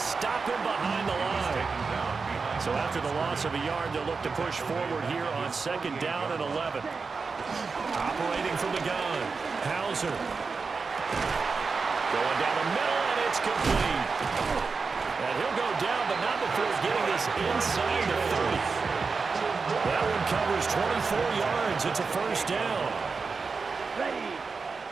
him behind the line. So after the loss of a yard, they'll look to push forward here on 2nd down and 11. Operating from the gun, Hauser. Going down the middle, and it's complete. And he'll go down, but not before getting this inside the 30. That one covers 24 yards. It's a 1st down. Ready.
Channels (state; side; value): quieter; left; 4.7 dB